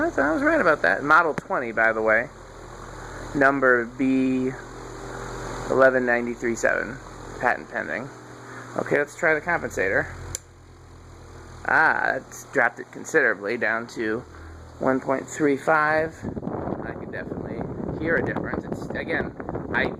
I was right about that. Model 20, by the way. Number B11937. Patent pending. Okay, let's try the compensator. It's dropped it considerably down to 1.35. I can definitely hear a difference. It's, again, I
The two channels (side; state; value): both; identical; correlation 1.00